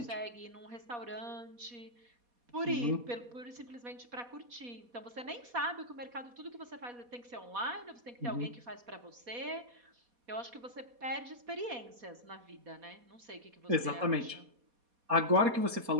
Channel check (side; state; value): left; late; 4.2 ms